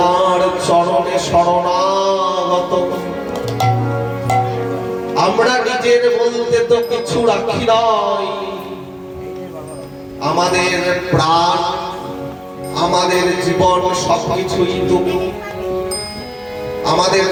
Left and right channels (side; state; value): both; identical; correlation 1.00